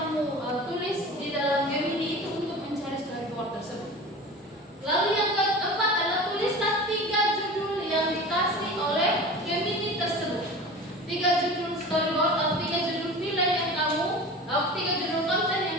tulis di dalam Gemini itu untuk mencari storyboard tersebut. Lalu yang keempat adalah tulislah 3 judul yang dikasih oleh Gemini tersebut. 3 judul storyboard atau 3 judul film yang kamu, 3 judul konten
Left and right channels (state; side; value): normal; both; correlation 0.35